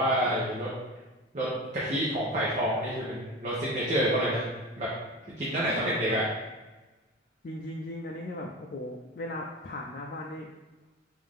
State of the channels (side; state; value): both; normal; correlation 0.29